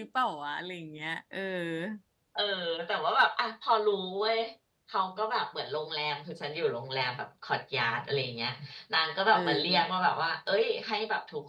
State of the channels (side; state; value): both; identical; correlation 1.00